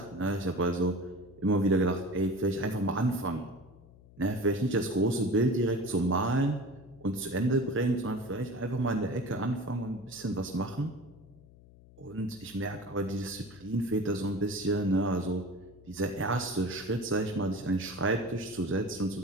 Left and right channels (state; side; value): noise; left; hum, 23 dB below the sound